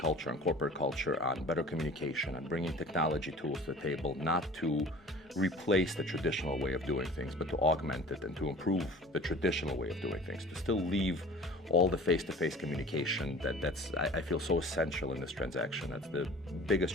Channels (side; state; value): both; normal; correlation 0.44